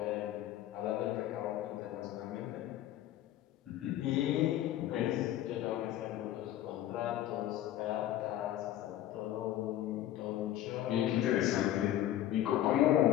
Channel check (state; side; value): quieter; right; 12.9 dB